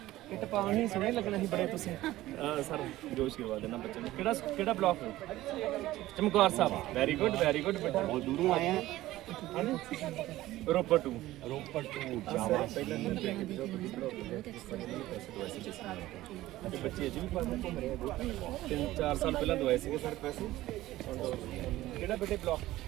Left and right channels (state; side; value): quieter; left; 16.1 dB